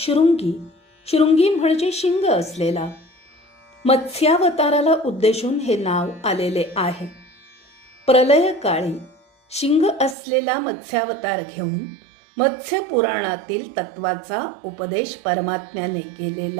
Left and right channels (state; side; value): drops out; left; at 10.2 s